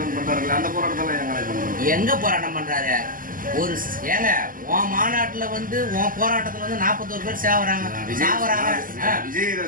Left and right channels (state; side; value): late; left; 0.41 ms